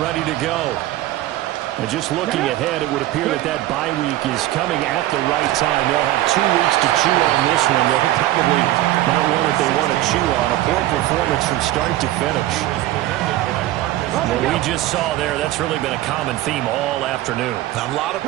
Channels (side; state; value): left; quieter; 15.3 dB